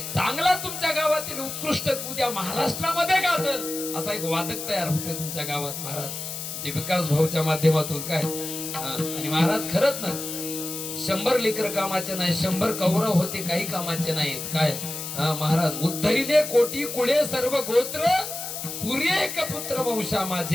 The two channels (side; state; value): left; noise; hiss, 7 dB below the sound